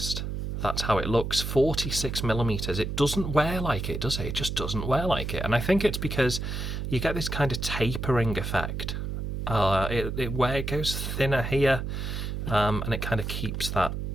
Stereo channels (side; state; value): right; noise; hum, 4 dB below the sound